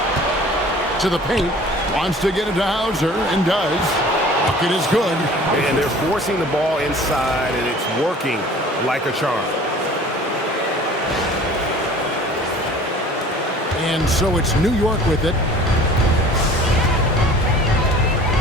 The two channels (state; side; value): normal; both; correlation 0.47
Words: To the paint. Wants to get it to Hauser and does. Bucket is good. And they're forcing the ball inside, and it's working like a charm. And so it's New York with it.